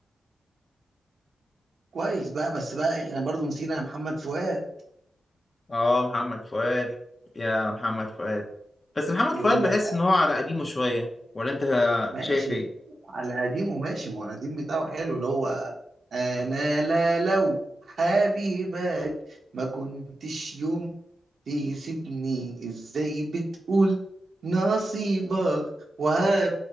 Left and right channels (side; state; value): both; normal; correlation 0.90